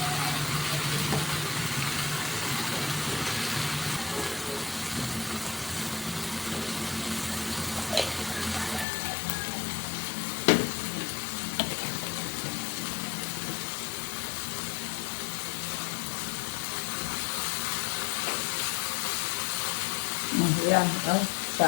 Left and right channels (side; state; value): right; drops out; at 8.8 s